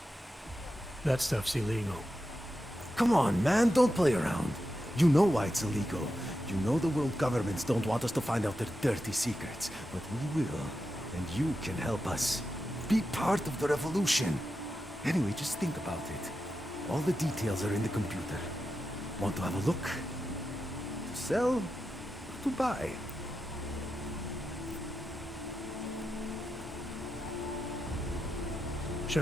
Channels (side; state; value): both; normal; correlation 0.89